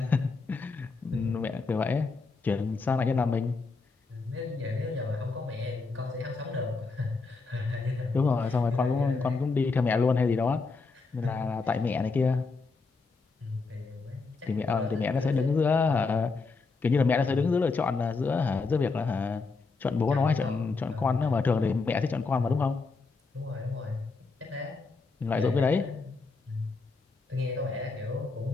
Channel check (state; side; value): quieter; right; 4.2 dB